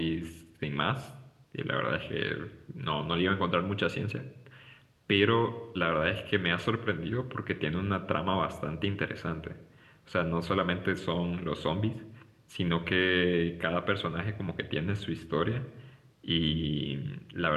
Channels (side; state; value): both; identical; correlation 1.00